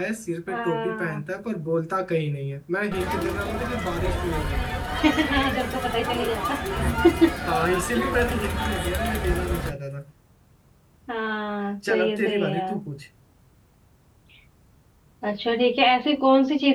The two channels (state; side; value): identical; both; correlation 1.00